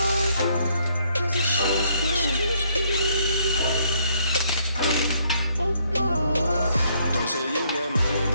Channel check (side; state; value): both; inverted; correlation -0.69